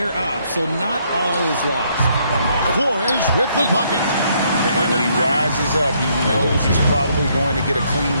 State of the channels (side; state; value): both; inverted; correlation -0.70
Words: up, so not all is lost. Flores with the bucket. And when he rises up, he knows he's probably going to get a clean